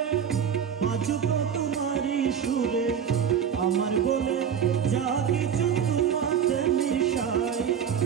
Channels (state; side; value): quieter; left; 8.0 dB